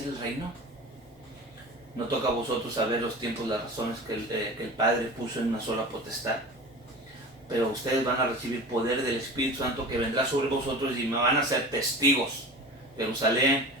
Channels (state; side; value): normal; both; correlation 0.35